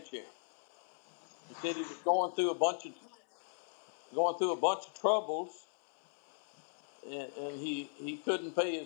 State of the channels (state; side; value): silent; right; digital silence